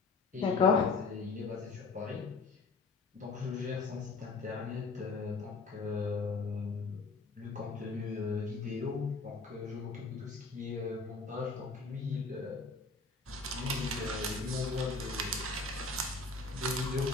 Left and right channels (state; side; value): quieter; right; 3.9 dB